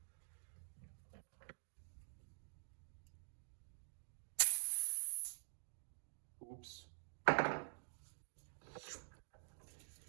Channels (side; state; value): left; silent; digital silence